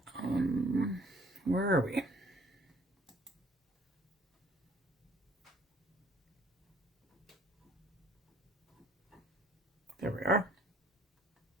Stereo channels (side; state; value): both; normal; correlation 0.56